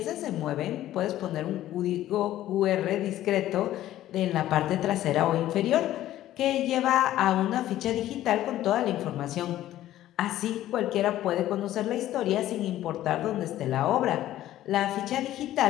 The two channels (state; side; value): quieter; right; 13.6 dB